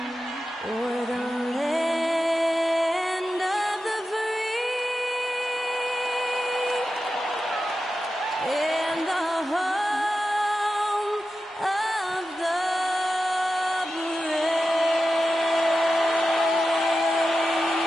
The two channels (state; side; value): normal; both; correlation 0.92